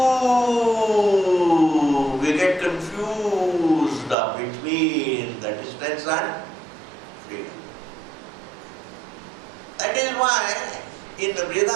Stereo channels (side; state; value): left; drops out; at 4.2 s